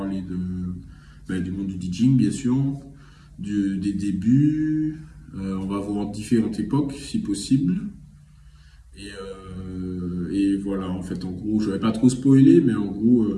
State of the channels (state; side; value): identical; both; correlation 1.00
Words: du monde du DJing, bien sûr, des débuts. On va voir différentes époques, si possible. Et fait, en gros, je vais pas trop spoiler, mais en gros,